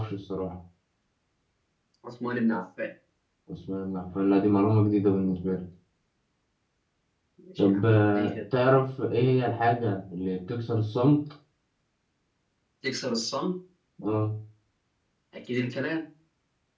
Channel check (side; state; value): both; identical; correlation 1.00